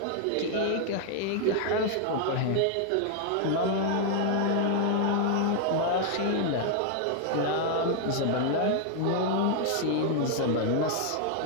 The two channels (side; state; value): both; different; correlation 0.00